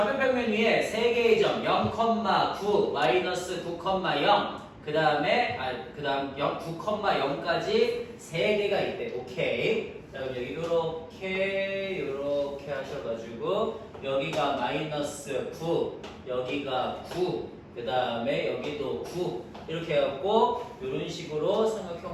위에 3개의 점 0,9, 마이너스 9,0 그 다음 9,0까지 3개가 있대. 오케이. 자, 그럼 여기 요렇게 하셔가지고 여기가 마이너스 9, 여기가 9, 그 다음에 여기도 9 이렇게 해갖고 이런 식으로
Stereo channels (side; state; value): both; identical; correlation 1.00